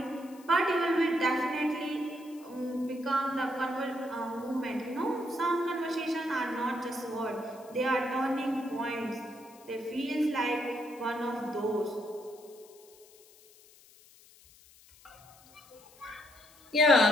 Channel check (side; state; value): left; noise; hiss, 25 dB below the sound